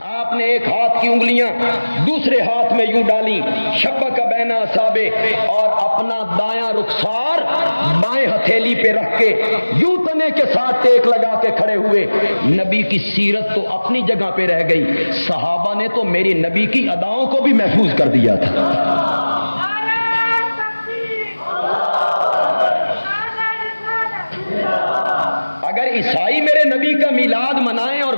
آپ نے ایک ہاتھ کی انگلیاں دوسرے ہاتھ میں یوں ڈالی، شبک بین اصابع، اور اپنا دایاں رخسار بائیں ہتھیلی پہ رکھ کے یوں تنے کے ساتھ ٹیک لگا کے کھڑے ہوئے۔ نبی کی سیرت تو اپنی جگہ پہ رہ گئی، صحابہ نے تو میری نبی کی اداؤں کو بھی محفوظ کر دیا تھا۔ اگر عیسائی میرے نبی کا میلاد منائیں اور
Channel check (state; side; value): inverted; both; correlation -1.00